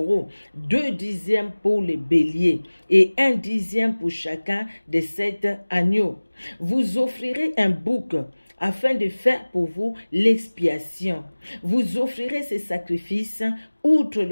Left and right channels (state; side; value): inverted; both; correlation -1.00